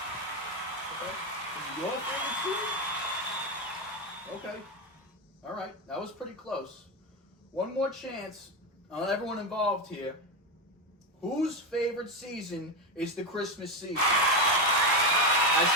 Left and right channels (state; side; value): normal; both; correlation 0.12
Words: Okay. Is it your favorite season? Okay. All right. That was pretty close. One more chance on everyone involved here. Whose favorite season is the Christmas season? That's